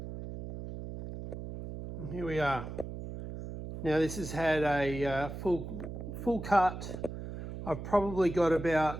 And here we are. Now this has had a full cut. I've probably got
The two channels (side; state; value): right; noise; hum, 9 dB below the sound